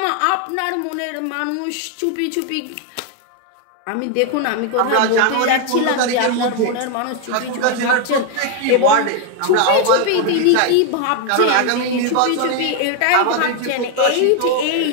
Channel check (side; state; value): both; different; correlation 0.01